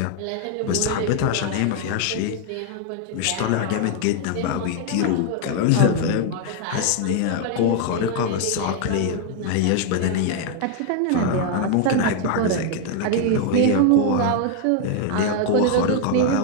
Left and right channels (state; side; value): different; both; correlation 0.00